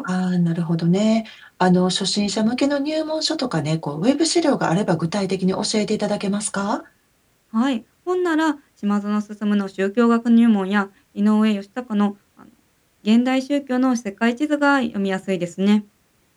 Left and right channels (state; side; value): identical; both; correlation 1.00